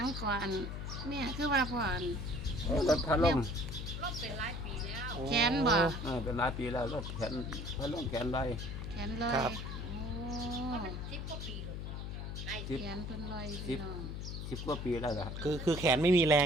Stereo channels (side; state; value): left; noise; hum, 6 dB below the sound